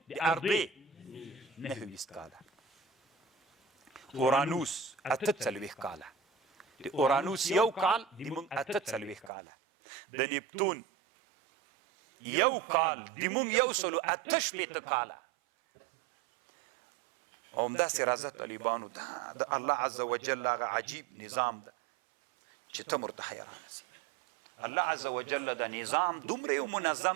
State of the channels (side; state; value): left; drops out; at 9.3 s